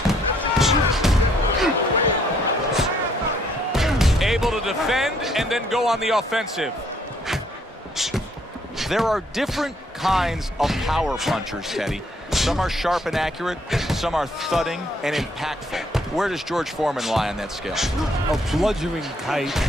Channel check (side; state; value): both; normal; correlation 0.67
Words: Able to defend and then go on the offensive. there are different kinds of power punchers, Teddy. Some are sharp and accurate, some are thudding and impactful. Where does George Foreman lie on that scale? A bludgeoning type